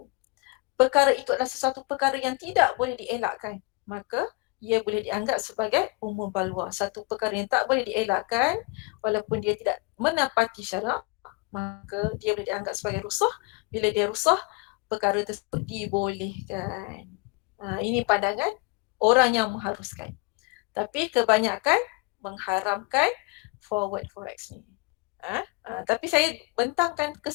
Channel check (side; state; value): right; quieter; 27.3 dB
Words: perkara itu adalah sesuatu perkara yang tidak boleh dielakkan, maka ia boleh dianggap sebagai umum balwa. Satu perkara yang tak boleh dielakkan walaupun dia tidak menepati syarak, maka dia boleh dianggap sebagai rusah. Bila dia rusah, perkara tersebut dibolehkan. Ini pandangan orang yang mengharuskan. Tapi kebanyakan mengharamkan forward forex ni. Tapi saya bentangkan ke